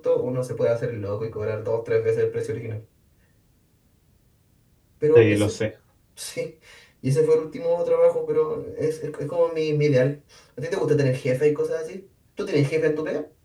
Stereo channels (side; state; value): both; identical; correlation 1.00